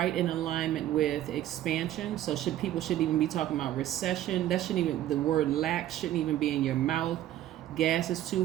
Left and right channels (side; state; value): left; quieter; 12.9 dB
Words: in alignment with expansion. So people should even be talking about recession. That shouldn't even, the word lack shouldn't even be in your mouth. Gas is